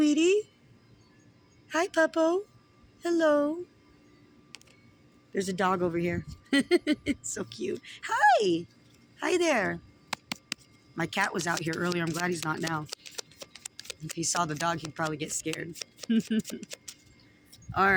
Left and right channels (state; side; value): identical; both; correlation 1.00